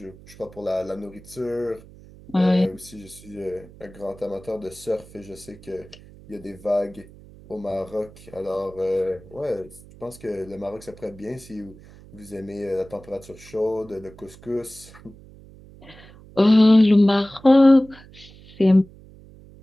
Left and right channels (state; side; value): noise; right; hum, 21 dB below the sound